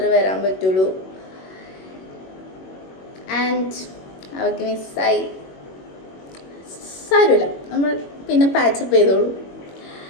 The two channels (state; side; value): late; right; 21 ms